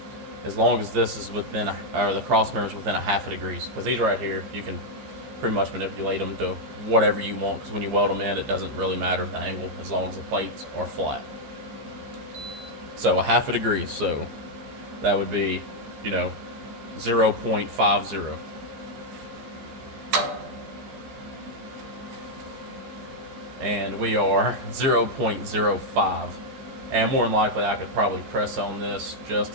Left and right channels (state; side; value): late; left; 15 ms